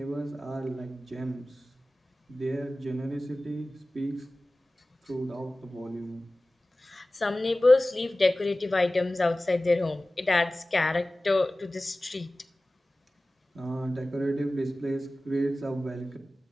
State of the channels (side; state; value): both; normal; correlation 0.97